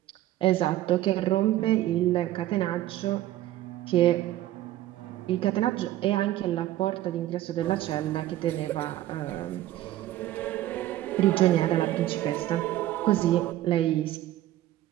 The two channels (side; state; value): left; quieter; 14.3 dB